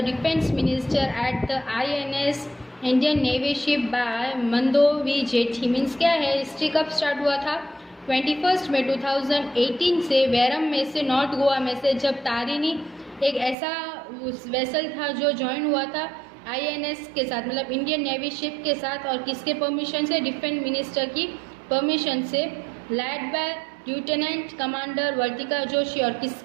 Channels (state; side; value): drops out; left; at 13.6 s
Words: Defence Minister at the INS Indian Navy ship by Mandovi jetty. Means क्या है, history कब start हुआ था? 21 मई 2018 से वैरम में से north Goa में से जब तारिनी एक ऐसा वेसल था जो ज्वाइन हुआ था INS के साथ, मतलब इंडियन नेवी शिप के साथ, और किसके परमिशन से? डिफेंस मिनिस्टर की परमिशन से, लैड बाय लेफ्टिनेंट कमांडर वर्तिका जोशी. और